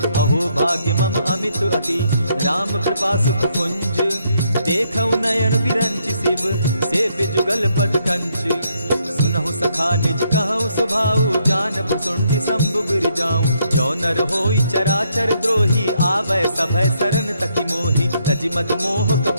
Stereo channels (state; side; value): inverted; both; correlation -0.74